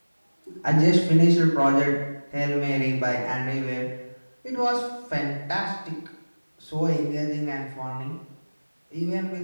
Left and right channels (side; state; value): both; inverted; correlation -1.00